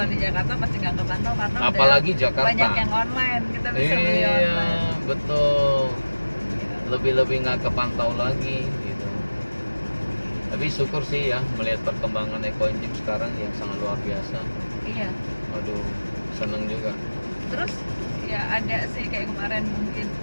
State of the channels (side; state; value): both; inverted; correlation -1.00